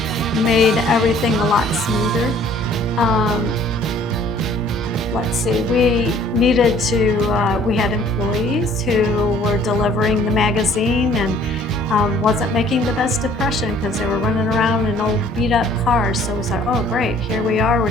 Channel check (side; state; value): both; normal; correlation 0.56